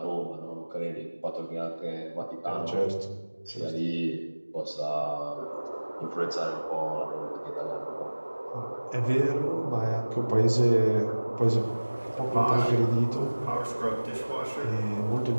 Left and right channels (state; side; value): inverted; both; correlation -1.00